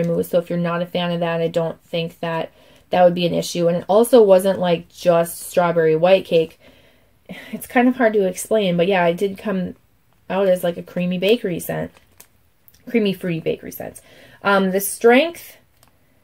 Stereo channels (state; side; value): identical; both; correlation 1.00